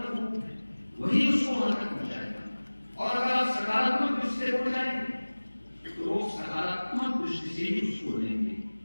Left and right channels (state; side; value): inverted; both; correlation -1.00